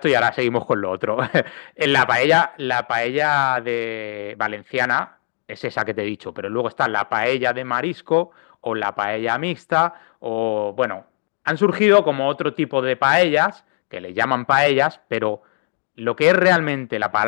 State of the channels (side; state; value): right; silent; digital silence